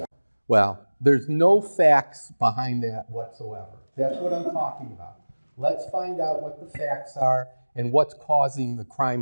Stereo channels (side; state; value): both; inverted; correlation -1.00